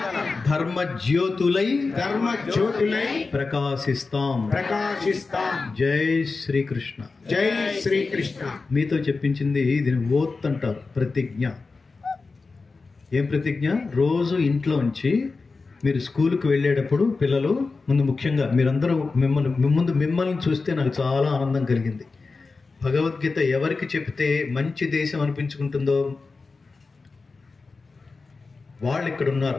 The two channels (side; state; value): right; quieter; 4.1 dB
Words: ధర్మ జ్యోతులై ప్రకాశిస్తాం. జై శ్రీకృష్ణ. జై శ్రీకృష్ణ. మీతో చెప్పించింది దీని ఓత్ అంటారు, ప్రతిజ్ఞ. ఏం ప్రతిజ్ఞ? రోజు ఇంట్లోంచి మీరు స్కూల్కి వెళ్ళేటప్పుడు పిల్లలు ముందు, ముఖ్యంగా మీరందరూ మిమ్మల్ని చూస్తే నాకు చాలా ఆనందం కలిగింది. భగవద్గీత ఎవరికి చెప్తే మంచి దేశం అనిపించుకుంటుందో వాళ్ళు ఇక్కడ